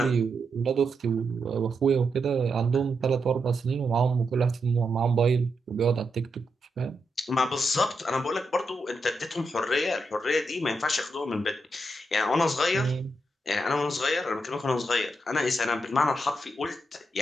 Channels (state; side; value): normal; both; correlation 0.84